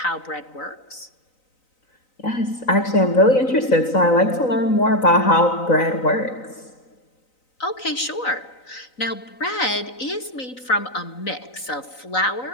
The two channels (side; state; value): right; late; 3.9 ms